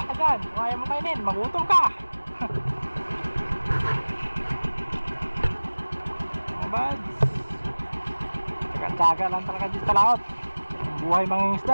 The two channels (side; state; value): both; inverted; correlation -1.00